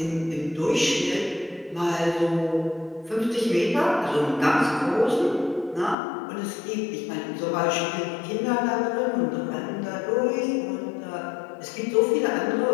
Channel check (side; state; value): right; drops out; at 6.0 s